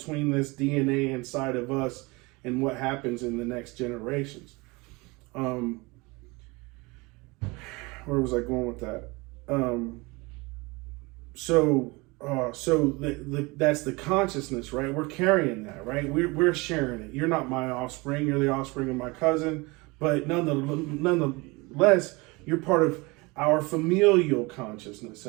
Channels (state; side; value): quieter; left; 25.2 dB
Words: this DNA inside of us and what happens in the next generations. Where was I going with that? That's the consciousness, right? We're carrying that, right? We're sharing it. You're not my offspring. You're the offspring of my cousin, but nonetheless, you're part of our familial consciousness